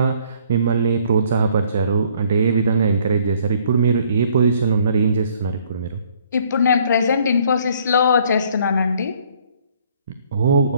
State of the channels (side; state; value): both; inverted; correlation -0.62